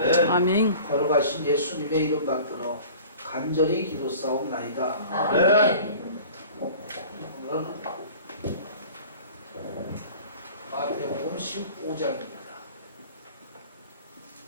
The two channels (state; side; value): inverted; both; correlation -0.44